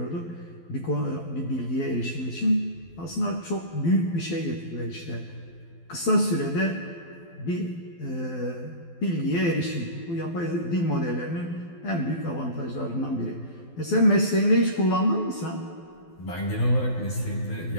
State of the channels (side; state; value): right; late; 12 ms